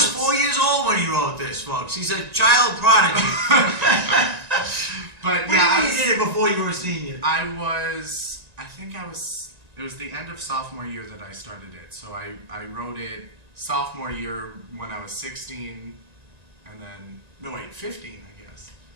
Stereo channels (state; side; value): late; left; 1.9 ms